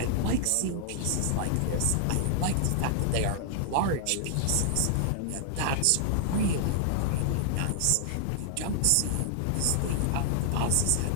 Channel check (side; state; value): both; different; correlation -0.01